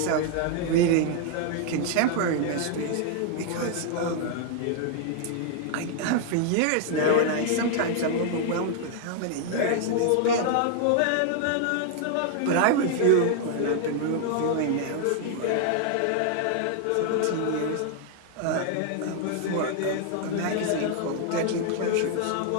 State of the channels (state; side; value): different; both; correlation 0.00